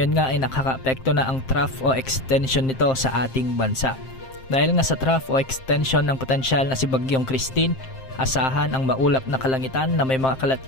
nga ay nakaka-apekto na ang trough o extension nito sa ating bansa. Dahil nga sa trough o extension ng potensyal na si Bagyong Christine, asahan ang maulap na kalangitan na may mga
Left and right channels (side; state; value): right; late; 7.6 ms